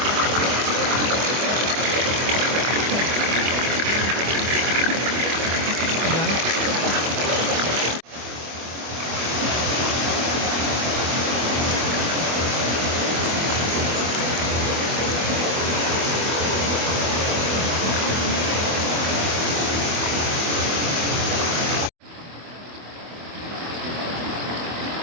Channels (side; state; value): left; late; 24 ms